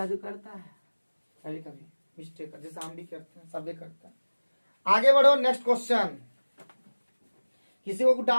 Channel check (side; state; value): both; inverted; correlation -1.00